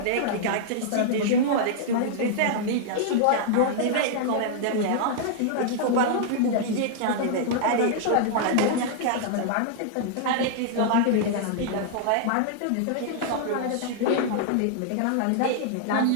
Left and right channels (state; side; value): different; both; correlation -0.01